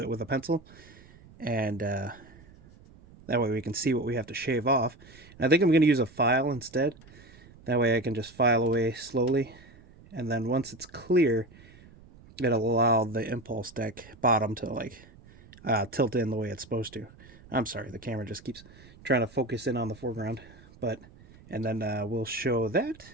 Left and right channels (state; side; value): noise; right; rumble, 23 dB below the sound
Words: with a pencil. And that way we can see what we have to shave off. And I think I'm going to use a file instead. That way I can just file away slowly. And then once it's clear, it'll allow the impulse deck bottom to tilt in the way it's supposed to. I'm sorry, the camera just keeps trying to focus in on the foreground. And then we'll show that.